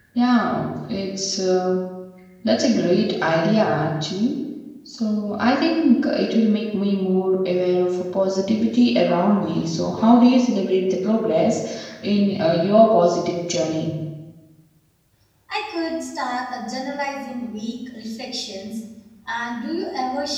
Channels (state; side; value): identical; both; correlation 1.00